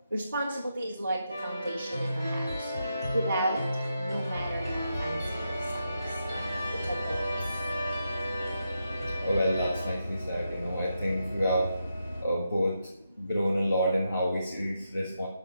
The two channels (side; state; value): both; inverted; correlation -0.84